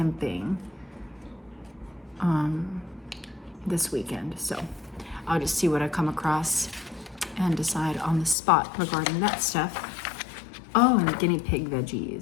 this weekend. So I'll just see what I come across and decide on the spot regarding that stuff. Oh, and guinea pig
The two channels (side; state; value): right; drops out; at 8.3 s